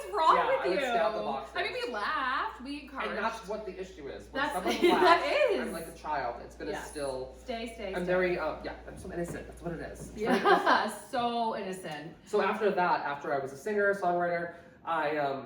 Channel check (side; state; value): both; identical; correlation 1.00